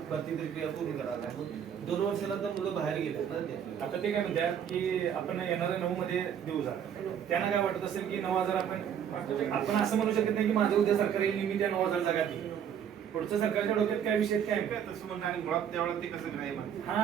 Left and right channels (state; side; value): quieter; left; 8.7 dB